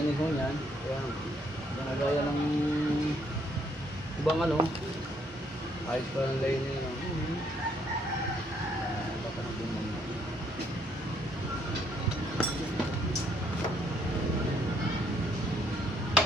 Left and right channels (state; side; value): normal; both; correlation 0.69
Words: ho niyan. Kaya, ginagaya ng ibang ano. Ayos pa ng lining. No?